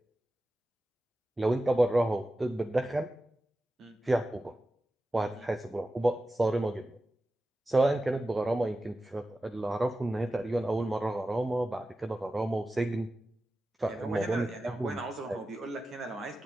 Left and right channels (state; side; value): normal; both; correlation 0.93